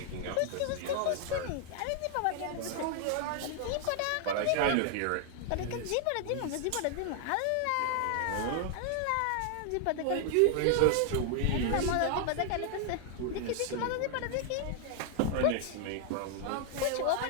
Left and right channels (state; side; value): different; both; correlation 0.00